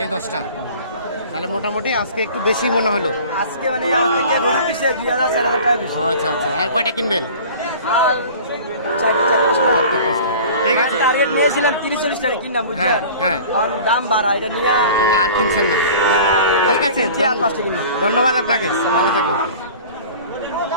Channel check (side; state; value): both; inverted; correlation -0.42